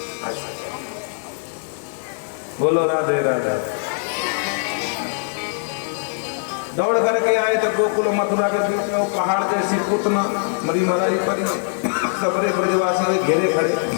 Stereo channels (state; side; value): silent; right; digital silence